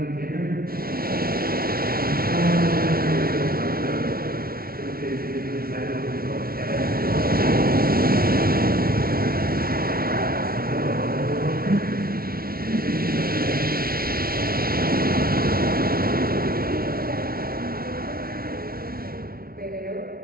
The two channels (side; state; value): left; late; 0.43 ms